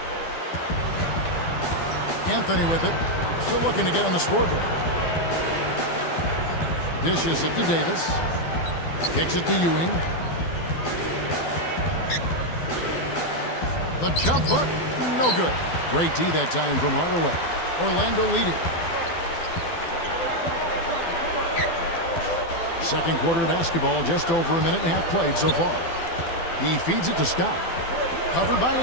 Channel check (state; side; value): late; right; 12 ms